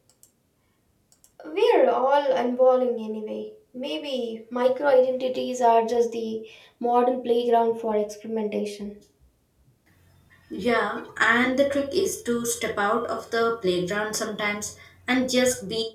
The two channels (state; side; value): identical; both; correlation 1.00